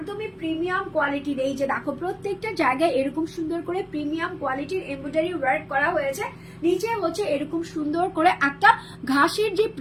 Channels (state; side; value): identical; both; correlation 1.00